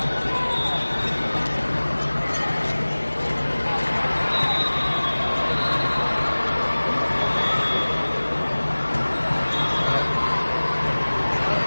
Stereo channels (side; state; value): both; inverted; correlation -1.00